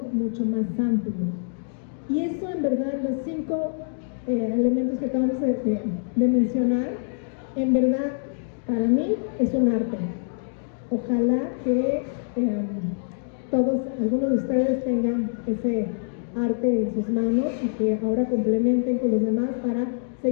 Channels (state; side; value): silent; right; digital silence